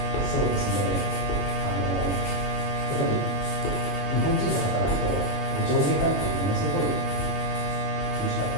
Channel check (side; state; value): right; late; 21 ms